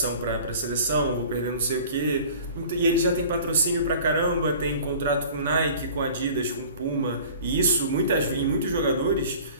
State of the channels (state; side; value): inverted; both; correlation -0.45